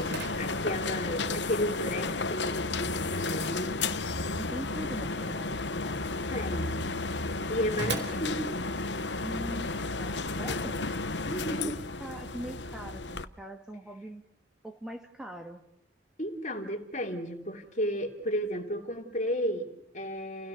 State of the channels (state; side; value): normal; both; correlation 0.24